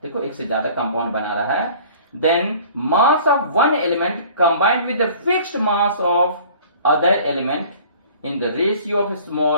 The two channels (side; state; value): both; inverted; correlation -0.49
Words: देखो एक से ज्यादा कंपाउंड बना रहा है, then mass of one element combined with the fixed mass of other element in the ratio of